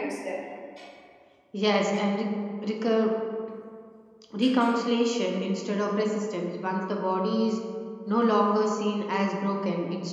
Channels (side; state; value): both; identical; correlation 1.00